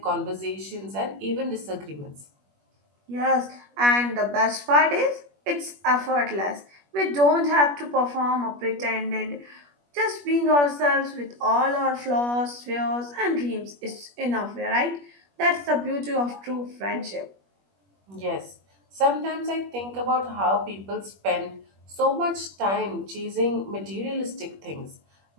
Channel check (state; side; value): late; left; 21 ms